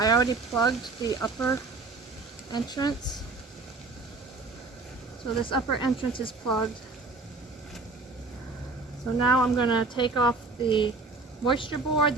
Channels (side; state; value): left; quieter; 3.7 dB